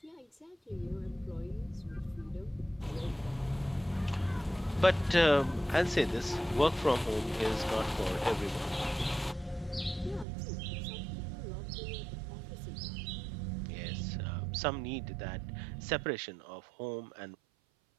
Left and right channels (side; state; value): left; drops out; at 10.2 s